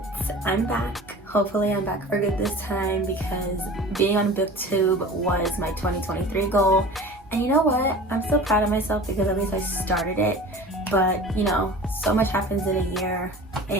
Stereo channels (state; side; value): normal; both; correlation 0.39